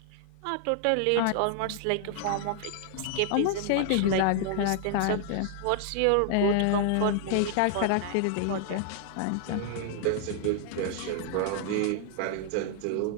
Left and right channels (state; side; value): different; both; correlation 0.00